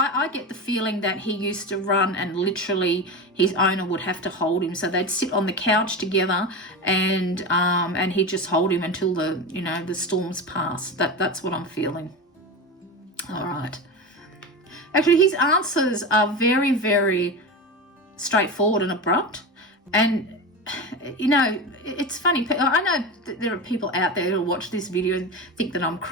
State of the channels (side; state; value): both; normal; correlation 0.23